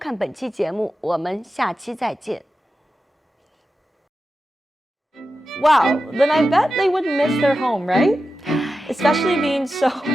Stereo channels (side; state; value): both; normal; correlation 0.92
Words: 本期节目，我们下期再见。Wow, then I bet they would miss their home, right? Especially being so...